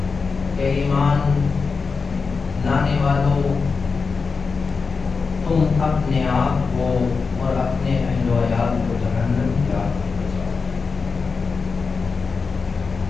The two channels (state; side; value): quieter; right; 4.9 dB